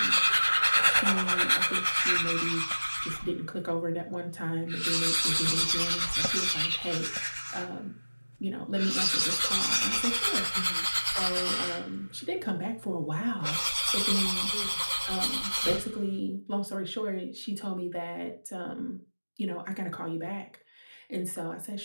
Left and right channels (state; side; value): inverted; both; correlation -1.00